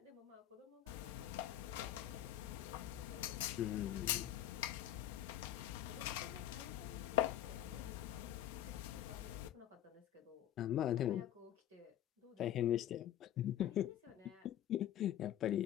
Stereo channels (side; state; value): right; quieter; 12.0 dB